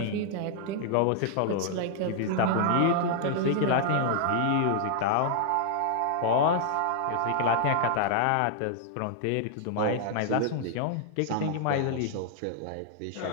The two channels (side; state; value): both; different; correlation -0.01